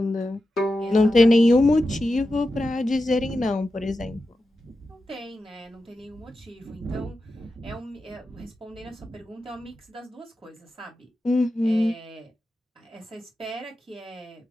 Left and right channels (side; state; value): both; normal; correlation 0.91